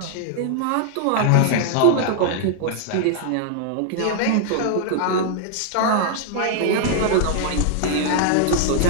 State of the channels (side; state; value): both; different; correlation -0.01